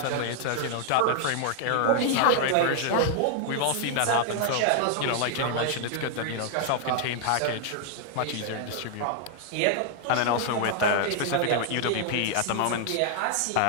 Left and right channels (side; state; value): both; different; correlation 0.00